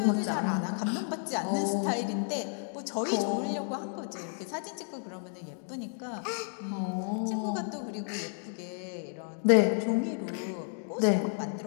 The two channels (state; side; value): silent; right; 57 dB below the other